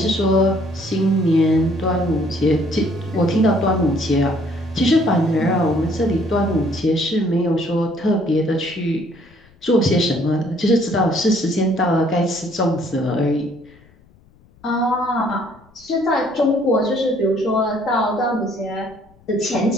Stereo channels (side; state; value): left; noise; rumble, 29 dB below the sound